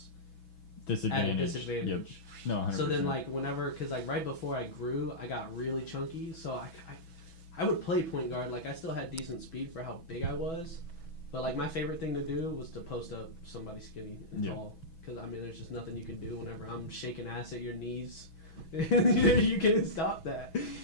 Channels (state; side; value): late; right; 6.1 ms